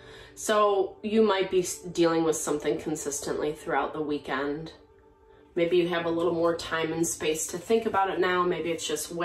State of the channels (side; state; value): both; identical; correlation 1.00